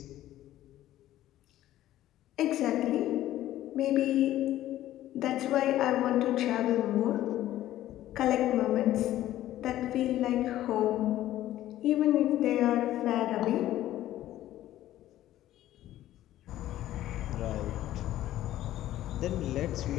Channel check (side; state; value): right; quieter; 13.7 dB